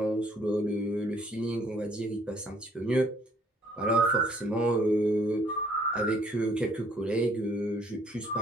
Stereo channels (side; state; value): both; normal; correlation 0.62